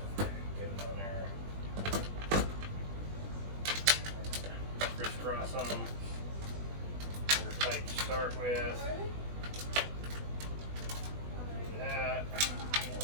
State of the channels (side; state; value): left; late; 20 ms